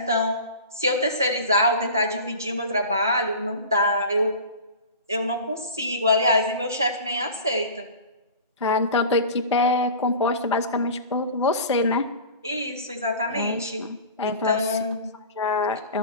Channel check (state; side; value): inverted; both; correlation -0.36